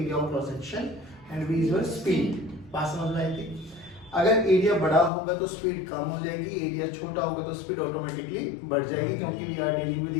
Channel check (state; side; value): drops out; right; at 5.1 s